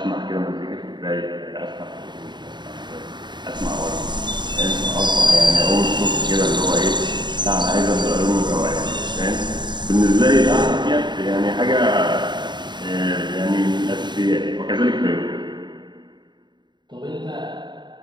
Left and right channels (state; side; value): late; left; 0.22 ms